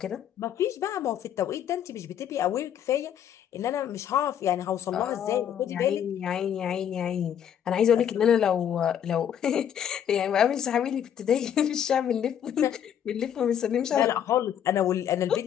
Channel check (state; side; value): quieter; right; 9.4 dB